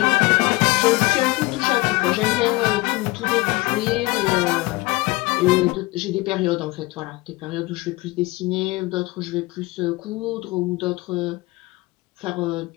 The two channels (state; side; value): quieter; right; 22.2 dB